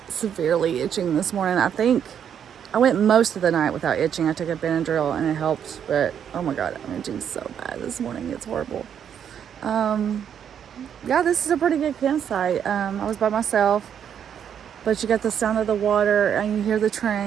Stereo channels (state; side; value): quieter; left; 8.6 dB